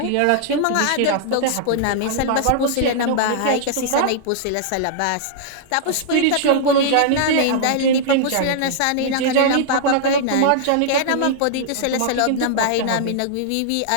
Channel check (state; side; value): different; both; correlation -0.01